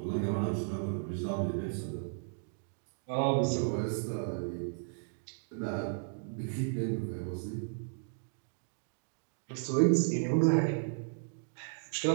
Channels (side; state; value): left; silent; digital silence